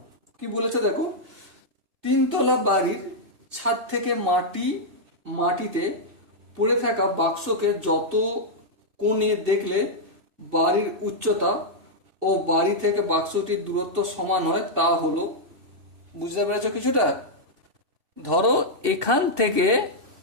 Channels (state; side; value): late; left; 2.6 ms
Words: কি বলেছে দেখো, তিনতলা বাড়ির ছাদ থেকে মাটিতে পড়ে থাকা বাক্সকে যত কোণে দেখলে বাড়ির উচ্চতা ও বাড়ি থেকে বাক্সটির দূরত্ব সমান হয় তা হলো। বুঝতে পেরেছো কিছুটা? ধরো এখান থেকে